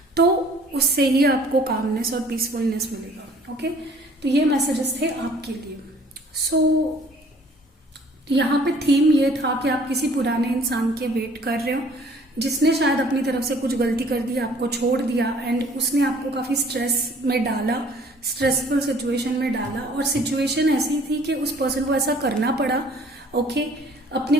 तो उससे ही आपको कामनेस और पीसफुलनेस मिलेगा। ओके, तो ये मैसेजेस थे आपके लिए। सो यहाँ पे थीम ये था कि आप किसी पुराने इंसान के वेट कर रहे हो जिसने शायद अपनी तरफ से कुछ गलती कर दी, आपको छोड़ दिया, एंड उसने आपको काफ़ी स्ट्रेस में डाला, स्ट्रेसफुल सिचुएशन में डाला। और सिचुएशन ऐसी थी कि उस पर्सन को ऐसा करना पड़ा, ओके,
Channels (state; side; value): normal; both; correlation 0.55